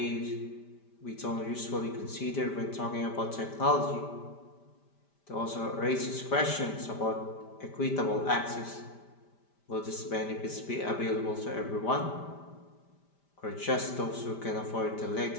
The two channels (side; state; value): right; late; 5.1 ms